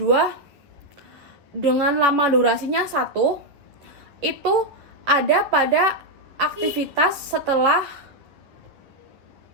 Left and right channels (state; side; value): late; left; 11 ms